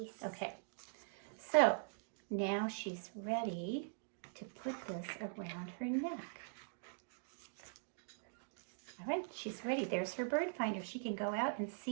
Okay, so now she's ready to put this around her neck. All right, she's ready. There's her bird finder. She can go out and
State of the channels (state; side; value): silent; left; digital silence